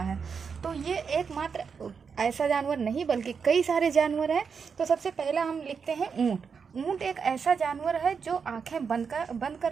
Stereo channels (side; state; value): left; quieter; 5.9 dB